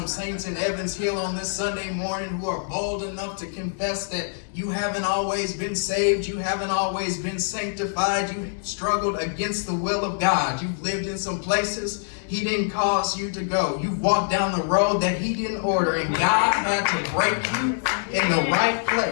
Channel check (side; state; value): right; silent; digital silence